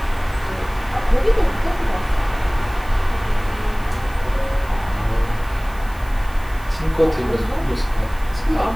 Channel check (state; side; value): noise; right; hiss, 23 dB below the sound